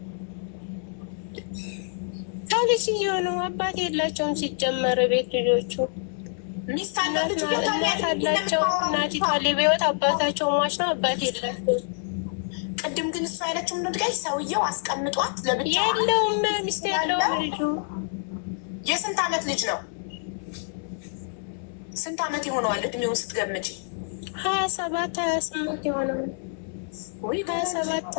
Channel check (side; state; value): right; silent; digital silence